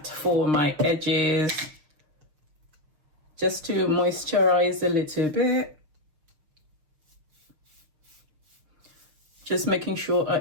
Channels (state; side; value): late; left; 6.5 ms